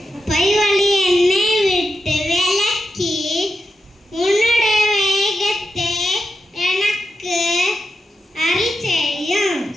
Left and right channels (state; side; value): normal; both; correlation 0.88